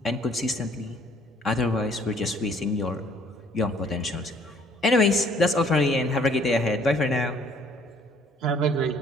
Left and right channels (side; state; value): both; normal; correlation 0.59